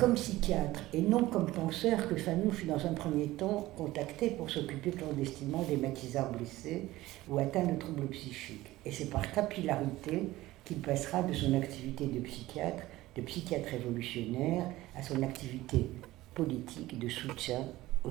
psychiatre et non comme penseur que Fanon fut dans un premier temps contacté pour s'occuper clandestinement des maquisards blessés ou atteints de troubles psychiques. Et c'est par capillarité qu'il passera de son activité de psychiatre révolutionnaire, à son activité politique de soutien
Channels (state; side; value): quieter; left; 17.2 dB